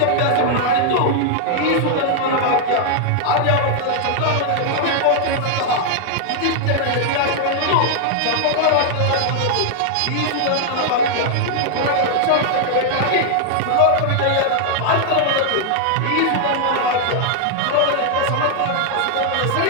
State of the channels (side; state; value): both; different; correlation 0.00